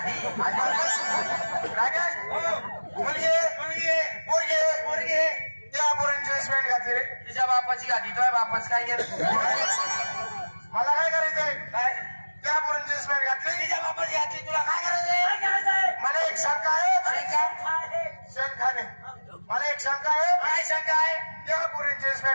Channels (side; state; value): both; inverted; correlation -1.00